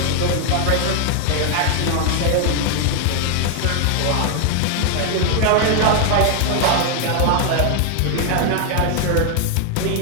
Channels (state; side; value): different; both; correlation 0.00